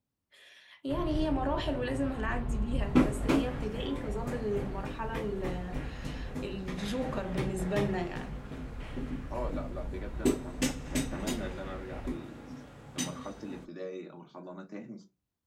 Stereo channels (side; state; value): both; identical; correlation 1.00